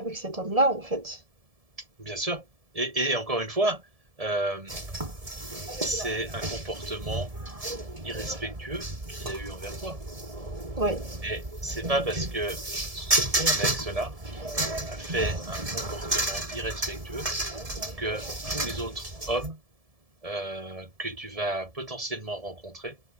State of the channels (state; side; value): late; left; 1.7 ms